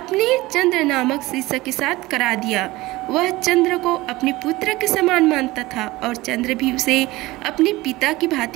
चंद्र नामक शिष्य के साथ करा दिया। वह चंद्र को अपने पुत्र के समान मानता था और चंद्र भी उसे अपने पिता की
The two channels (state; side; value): quieter; left; 19.5 dB